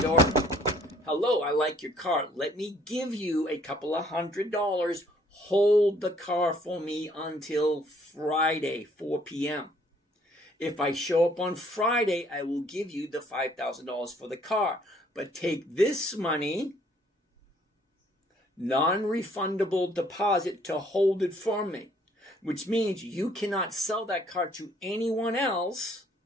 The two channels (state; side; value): normal; both; correlation 0.62